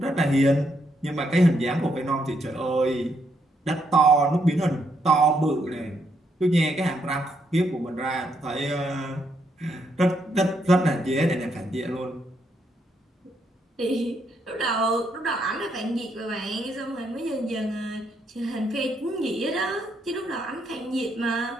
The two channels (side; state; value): both; normal; correlation 0.76